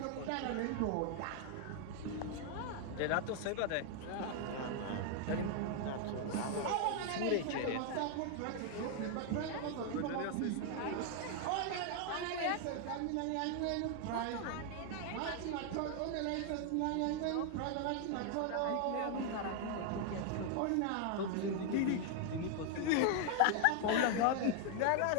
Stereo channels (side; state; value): both; different; correlation 0.00